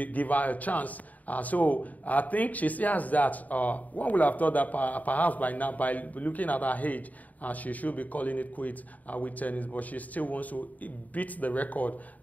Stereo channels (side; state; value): right; late; 0.075 ms